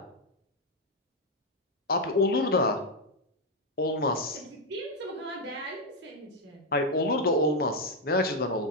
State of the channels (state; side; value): normal; both; correlation 0.03